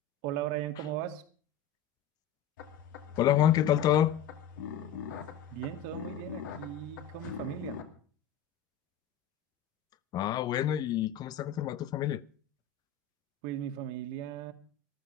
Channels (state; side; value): quieter; right; 6.9 dB